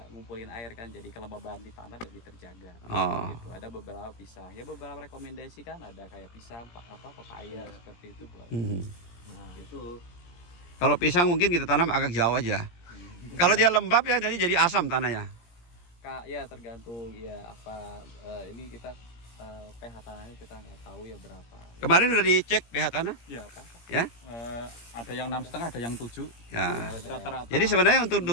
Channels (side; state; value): right; late; 17 ms